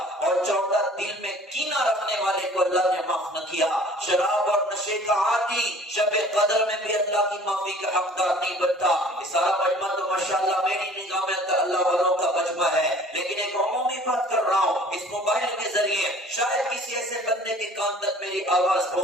اور چوتھا دل میں کینہ رکھنے والے کو اللہ نے معاف نہ کیا۔ شراب اور نشے کا عادی شب قدر میں بھی اللہ کی معافی کا حقدار نہیں بنتا۔ یہ سارا مجمع تو ماشاءاللہ میری نگاہ میں اللہ والوں کا مجمع ہے، لیکن ایک عمومی بات کر رہا ہوں، اس موبائل کے ذریعے شاید کسی ایسے بندے کے کان تک میری آواز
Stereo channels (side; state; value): both; normal; correlation 0.50